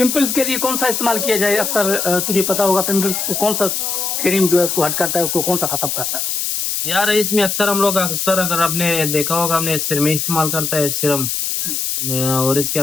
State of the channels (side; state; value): left; noise; hiss, 1 dB below the sound